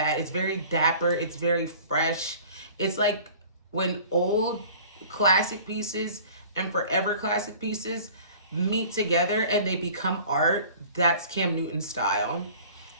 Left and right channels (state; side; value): inverted; both; correlation -0.46